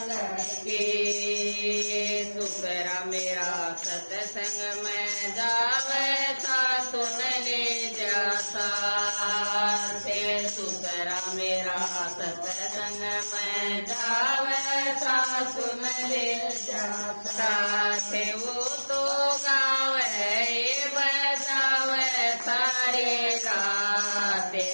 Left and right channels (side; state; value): both; inverted; correlation -1.00